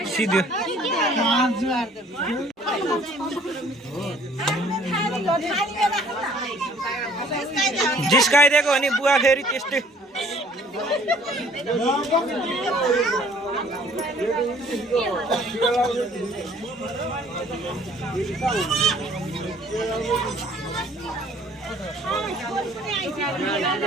सिद्धो जिस्काइदिएको हो नि बुवा फेरि त्यस्तै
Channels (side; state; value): both; normal; correlation 0.56